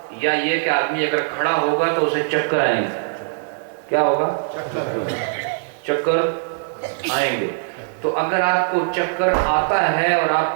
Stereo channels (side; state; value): left; silent; digital silence